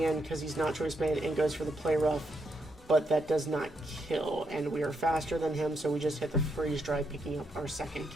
in because he's not Choice Band and goes for the Play Rough, but that does not kill, and we are faster than him, so we just hit the Freeze Dry, picking up our second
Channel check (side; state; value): both; normal; correlation 0.79